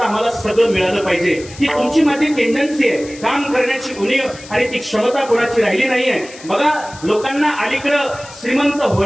आम्हाला सगळं मिळालं पाहिजे. ही तुमची माझी टेंडन्सी आहे. काम करण्याची उणीव आणि ती क्षमता कोणाची राहिली नाहीये. बघा, लोकांना अलीकडं श्रीमंत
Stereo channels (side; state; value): left; noise; hiss, 18 dB below the sound